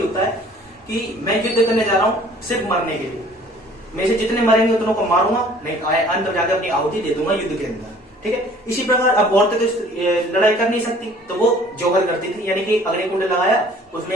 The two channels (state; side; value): normal; both; correlation 0.53